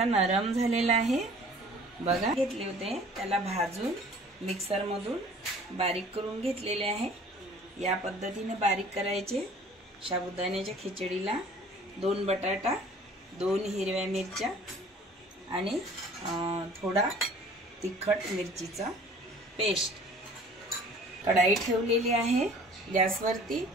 नरम झालेला आहे। बघा, घेतले होते त्याला भाजून मिक्सर मधून बारीक करून घेतलेले आहे। या पद्धतीने बारीक करायचे। साबुदाण्याच्या खिचडीला 2 बटाटा, 2 हिरव्या मिरच्या आणि थोडा तिखट मिरचीचा पेस्ट। कढाई ठेवलेली आहे गॅसवरती।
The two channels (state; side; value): normal; both; correlation 0.50